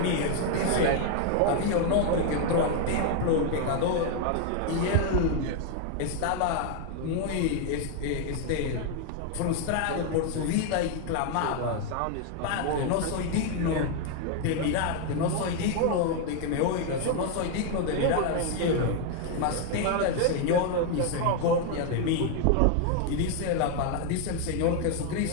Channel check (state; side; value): different; both; correlation 0.00